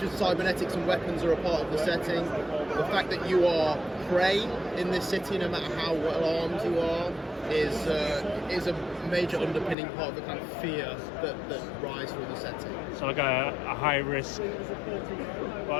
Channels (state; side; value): drops out; right; at 9.8 s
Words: as cybernetics and weapons are a part of the setting, the fact that you are prey in this city, no matter how well armed you are, is a major underpinning part of the kind of fear that rises through the setting. So like a high risk